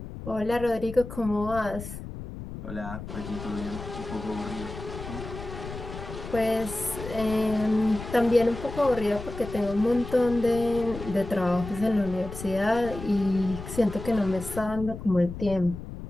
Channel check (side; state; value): left; noise; rumble, 10 dB below the sound